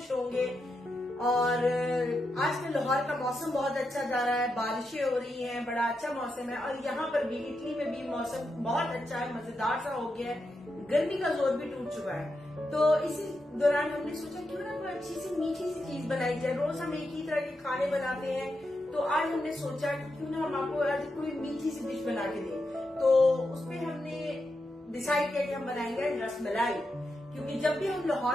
होंगे। और आजकल लाहौर का मौसम बहुत अच्छा जा रहा है, बारिशें हो रही हैं, बड़ा अच्छा मौसम है। और यहाँ पर भी इटली में भी मौसम बहुत अच्छा है, मजेदार सा हो गया है। गर्मी का जोर भी टूट चुका है। तो इसी दौरान हमने सोचा क्यों ना कोई अच्छी सी मीठी सी चीज बनाई जाए। रोज हम एक ही तरह के खाने बनाते हैं, तो आज हमने सोचा कि क्यों ना हम आपको आज कोई मीठी सी डिश बना के दें। तो उसमें हमने डिसाइड किया कि हम बनाएंगे रसमलाई। क्योंकि जब भी हम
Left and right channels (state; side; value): normal; both; correlation 0.86